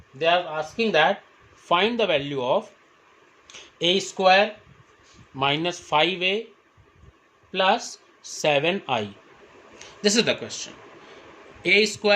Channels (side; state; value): both; identical; correlation 1.00